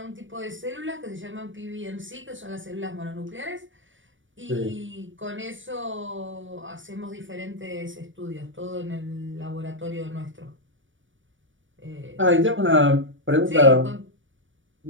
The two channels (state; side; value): late; left; 0.56 ms